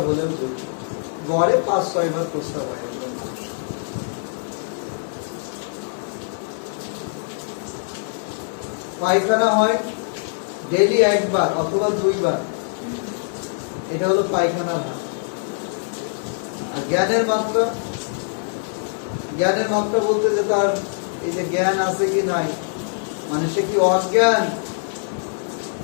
হলেও ঝুঁকি। গড়ে 5-6 বার প্রস্রাব হয় একজন মানুষ। পায়খানা হয় ডেইলি 1 বার অথবা 2 বার, এটা হলো পায়খানার হার। আর জ্ঞানের মাত্রা, জ্ঞানের মাত্রা বলতে যে তার এই যে জ্ঞান আছে কি নাই, মানে সে কি অজ্ঞান,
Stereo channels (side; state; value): right; silent; digital silence